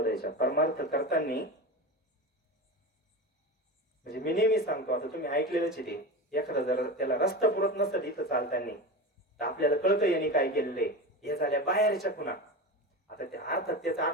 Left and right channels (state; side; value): normal; both; correlation 0.26